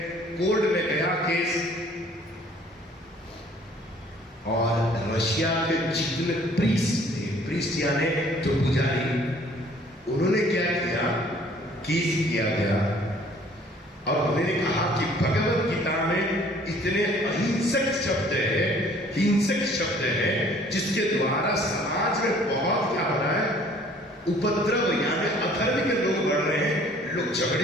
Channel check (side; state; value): both; normal; correlation 0.56